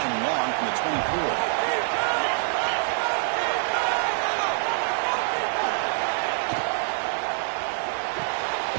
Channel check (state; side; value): silent; left; digital silence